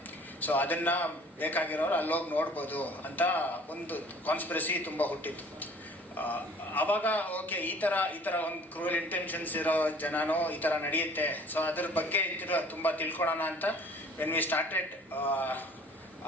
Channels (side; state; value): both; normal; correlation 0.52